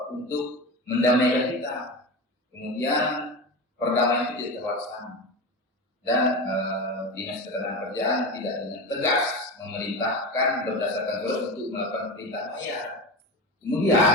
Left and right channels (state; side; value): normal; both; correlation 0.24